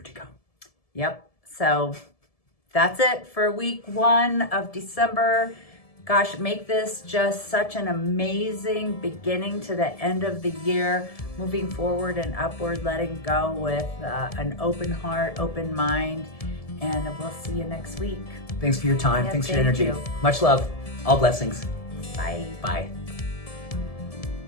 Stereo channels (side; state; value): right; late; 1.7 ms